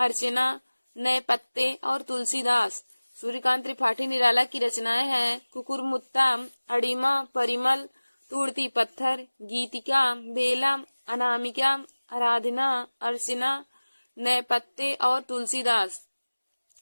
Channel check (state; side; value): inverted; both; correlation -1.00